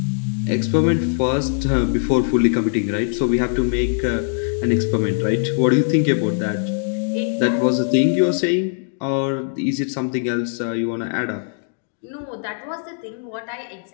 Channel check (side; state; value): right; silent; digital silence